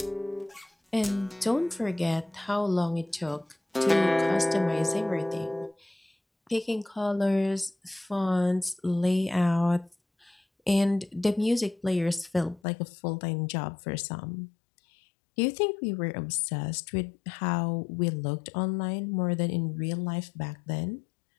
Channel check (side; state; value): right; drops out; at 12.6 s